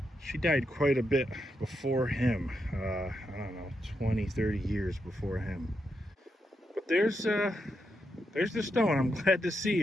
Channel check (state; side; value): normal; both; correlation 0.83